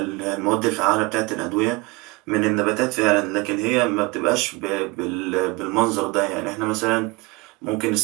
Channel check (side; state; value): left; quieter; 25.1 dB